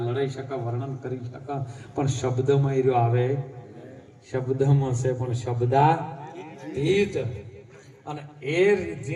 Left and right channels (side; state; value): both; identical; correlation 1.00